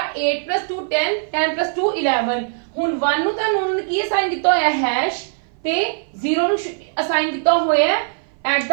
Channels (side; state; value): left; silent; 58 dB below the other